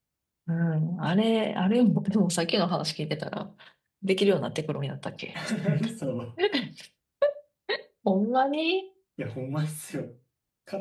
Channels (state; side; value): identical; both; correlation 1.00